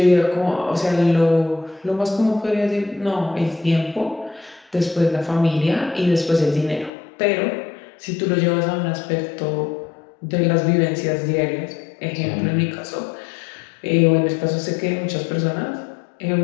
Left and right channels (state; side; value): drops out; right; at 6.9 s